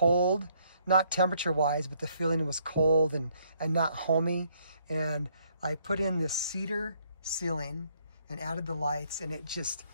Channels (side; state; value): both; inverted; correlation -0.68